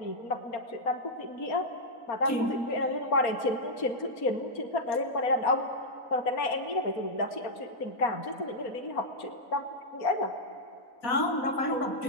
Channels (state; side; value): late; right; 4.3 ms